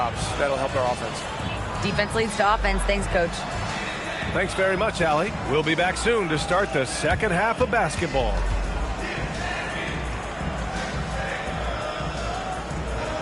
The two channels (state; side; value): identical; both; correlation 1.00